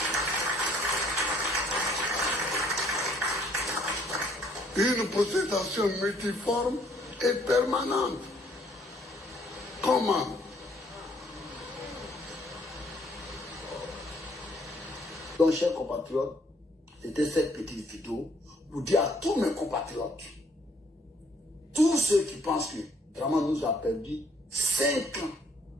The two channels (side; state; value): both; normal; correlation 0.64